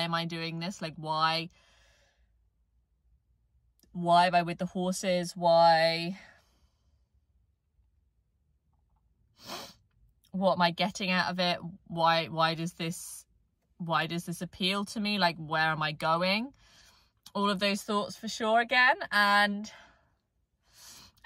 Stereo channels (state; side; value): identical; both; correlation 1.00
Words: am I doing this, like why am I with the horses, what am I getting out of it, why does this appeal to me, like where am I going, all of those thoughts for sure again. And